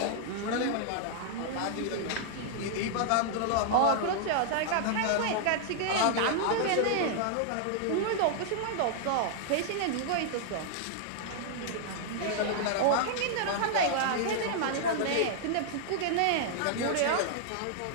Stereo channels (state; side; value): different; both; correlation -0.01